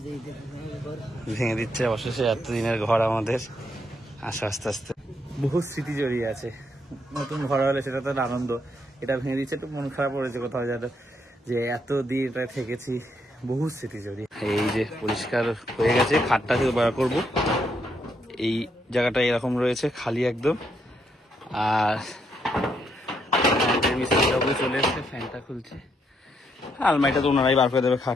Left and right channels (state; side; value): normal; both; correlation 0.76